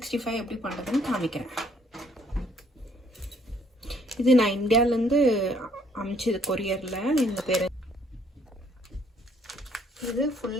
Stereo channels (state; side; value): normal; both; correlation 0.65